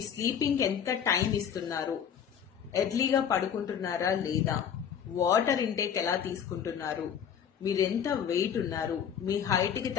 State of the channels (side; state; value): right; quieter; 8.3 dB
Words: స్లీపింగ్ ఎంత టైం ఇస్తున్నారు, ఎర్లీగా పడుకుంటున్నారా లేదా, వాటర్ ఇంటేక్ ఎలా తీసుకుంటున్నారు, మీరు ఎంత వెయిట్ ఉన్నారు, మీ హైట్కి